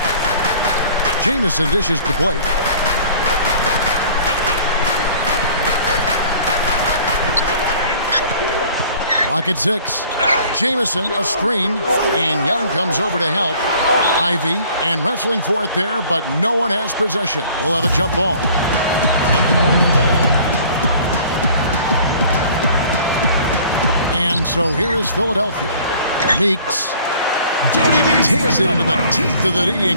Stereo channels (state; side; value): inverted; both; correlation -0.51